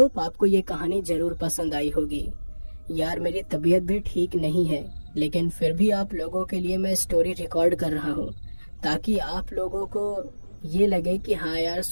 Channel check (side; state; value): both; inverted; correlation -1.00